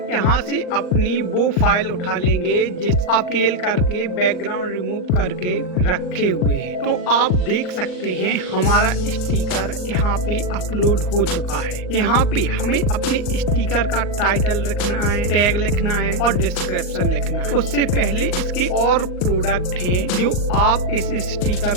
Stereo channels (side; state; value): right; late; 39 ms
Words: यहाँ से अपनी वो फाइल उठा लेंगे जिस आप स्केल करके बैकग्राउंड रिमूव करके रखे हुए हैं। तो आप देख सकते हैं हमारा स्टिकर यहाँ पे अपलोड हो चुका है। यहाँ पे हमें अपने स्टिकर का टाइटल लिखना है, टैग लिखना है और डिस्क्रिप्शन लिखना है। उससे पहले इसके और प्रोडक्ट हैं जो आप इस